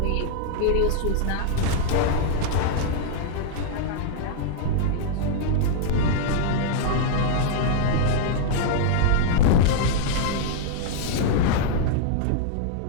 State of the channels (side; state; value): both; different; correlation -0.01